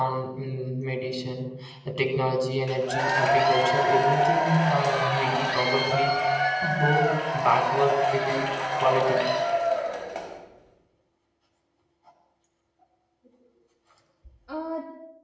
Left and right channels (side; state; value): both; identical; correlation 1.00